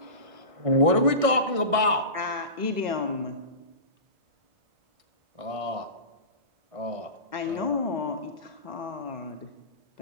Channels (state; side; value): late; left; 1.6 ms